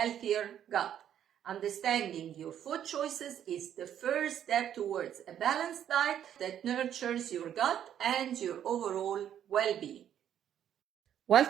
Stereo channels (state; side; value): quieter; left; 10.0 dB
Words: gut. Understanding your food choices is the first step towards a balanced diet that nurtures your gut and your overall well-being.